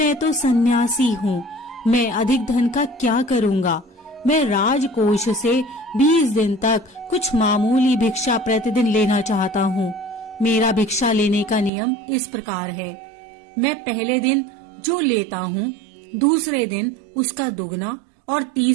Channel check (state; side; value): drops out; left; at 11.7 s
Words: तो सन्यासी हूँ, मैं अधिक धन का क्या करूँगा? मैं राजकोष से 20 दिन तक कुछ मामूली भिक्षा प्रतिदिन लेना चाहता हूँ। मेरा भिक्षा लेने का नियम इस प्रकार है, मैं पहले दिन जो लेता हूँ, दूसरे दिन उसका दुगना और